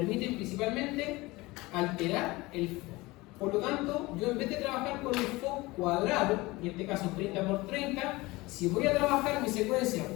principalmente alterar el FOC. Por lo tanto, yo en vez de trabajar con el FOC cuadrado, en este caso 30 por 30, si voy a trabajar mi secuencia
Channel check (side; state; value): right; quieter; 21.4 dB